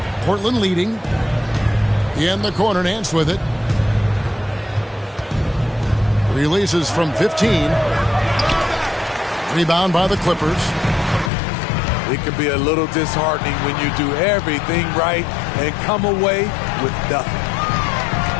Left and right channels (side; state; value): right; drops out; at 11.3 s